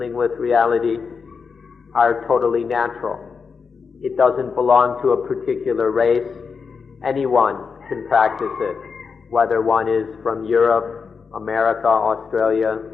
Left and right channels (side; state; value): right; quieter; 5.5 dB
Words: with reality are totally natural. It doesn't belong to a particular race. Anyone can practice it, whether one is from Europe, America, Australia,